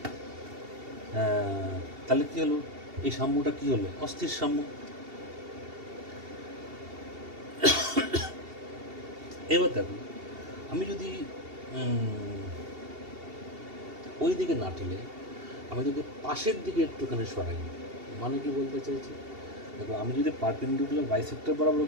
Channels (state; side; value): late; left; 2.7 ms